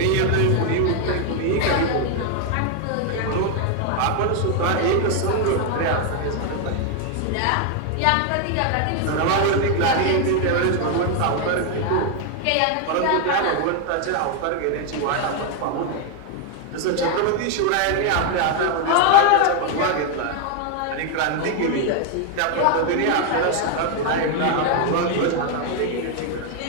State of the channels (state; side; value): different; both; correlation 0.01